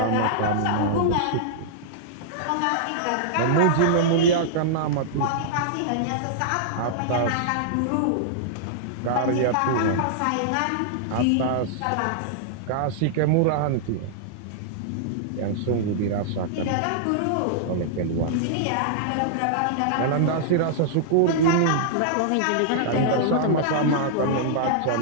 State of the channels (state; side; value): different; both; correlation -0.01